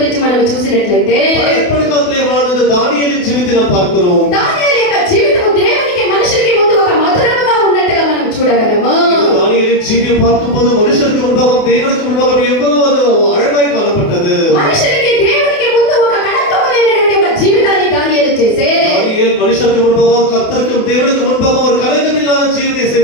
మనం చూసినట్లయితే పழைய కాలంలో வாழ்ந்த దానియేలిன் జీవితం நாம் பார்க்கிறோம். దానియేలు యొక్క జీవితం దేవునికి మనుషులకి ముందు ఒక మధురముగా ఉన్నట్టుగా మనం చూడగలము. దానియేలిன் జీవితం பார்க்கும்போது மனுஷருக்கு முன்பாகவும் தேவனுக்கு முன்பாகவும் எவ்வளவு அது அழகாய் காணப்பட்டது. మనుషులకి దేవునికి ముందు ఒక కళంకములైనటువంటి ఒక జీవితాన్ని దానియేలు చేసే దానియేలు మనుషులకు முன்பாகவும் கர்த்தருக்கு தேவனுக்கு முன்பாகவும் ஒரு கலங்கமில்லாத జీవితం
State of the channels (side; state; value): right; late; 28 ms